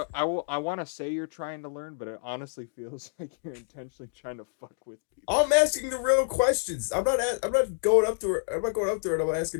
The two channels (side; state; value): right; silent; digital silence